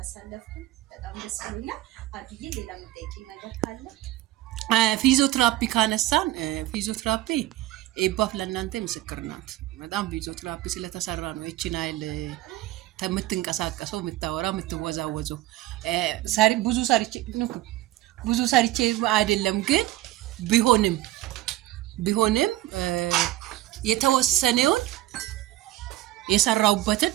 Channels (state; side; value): quieter; left; 16.1 dB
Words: በጣም ደስ ብሎኛል አድዬ ሌላ ምጠይቂ ነገር ካለ ፊዚዮቴራፒ ካነሳን ፊዚዮቴራፒ ኤባፍ ለእናንተ ምስክር ናት በጣም ፊዚዮቴራፒ ስለተሰራ ነው እቺን አይል ተምትንቀሳቀሰው ምታወራ ምትወዛወዘው ብዙ ሰርቼ አይደለም ግን ቢሆንም የተወሰነውን የሰራውበትን